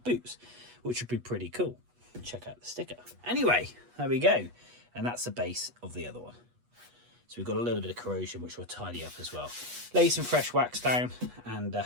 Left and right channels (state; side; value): late; left; 8.3 ms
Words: boots, which would be pretty cool. Check out the sticker. Anyway, there we go. And that's the base of the other one. So we've got a little bit of corrosion, which we'll tidy up as well. Lay some fresh wax down, and